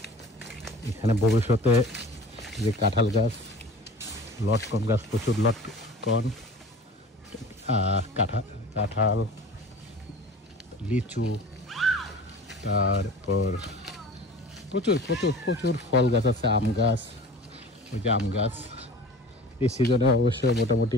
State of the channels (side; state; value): both; normal; correlation 0.41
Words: এখানে ভবিষ্যতে যে কাঁঠাল গাছ, লটকন গাছ, প্রচুর লটকন, কাঁঠাল, লিচু, তারপর প্রচুর প্রচুর প্রচুর ফল গাছ আছে, আম গাছ, ওই যে আম গাছ এই সিজনে অবশ্যই